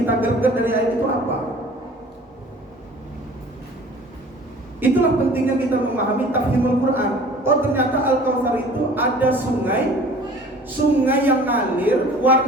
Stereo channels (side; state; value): both; normal; correlation 0.47